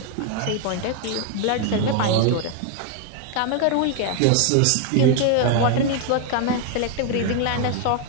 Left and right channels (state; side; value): different; both; correlation 0.00